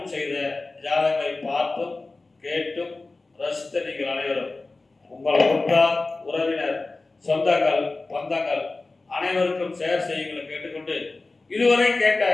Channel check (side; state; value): right; quieter; 3.4 dB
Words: செய்த ஜாதகங்களை பார்த்தும் கேட்டும் ரசித்த நீங்கள் அனைவரும் உங்கள் உற்றார் உறவினர் சொந்தங்கள் பந்தங்கள் அனைவருக்கும் ஷேர் செய்யுங்களை கேட்டுக்கொண்டு இதுவரை கேட்ட